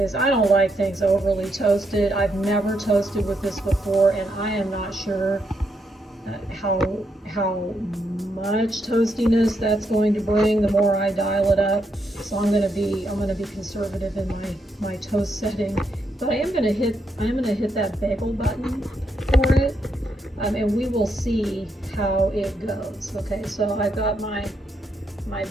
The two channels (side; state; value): both; normal; correlation 0.79